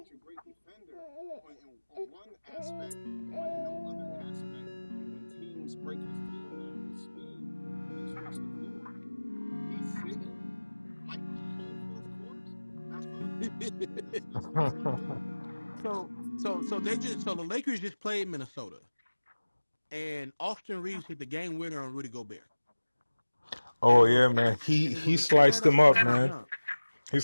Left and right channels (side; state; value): both; inverted; correlation -1.00